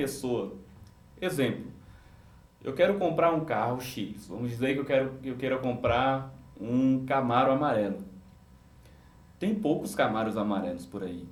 exemplo, eu quero comprar um carro X, vamos dizer que eu quero comprar um Camaro amarelo. Tem poucos Camaros amarelos por aí.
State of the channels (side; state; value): both; identical; correlation 1.00